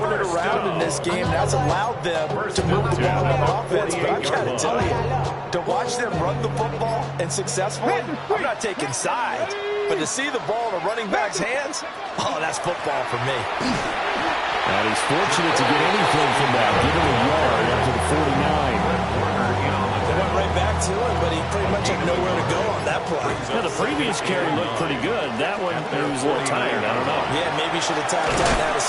it around in this game. That's allowed them to move the ball on offense. But I've got to tell you, to watch them run the football and successfully, I'm not taking sides. But to see the ball in a running back's hands, oh, that's football for me. And he's fortunate to get anything from that. Give him a yard up to the 49. They went right back to him, but he pretty much had nowhere to go on that play. Yeah, the previous carry looked pretty good. That one, he was a little tired. I don't know. Yeah, maybe he should have tapped out and had a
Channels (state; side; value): identical; both; correlation 1.00